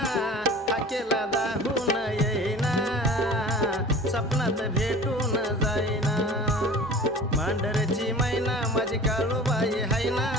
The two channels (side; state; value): both; normal; correlation 0.41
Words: हाकेला दाहून येईना, सपनात भेटून जाईना। मांढरची मैना माझी काळूबाई हाय ना,